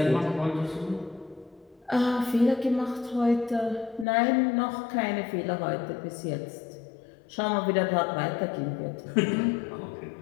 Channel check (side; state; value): right; drops out; at 4.0 s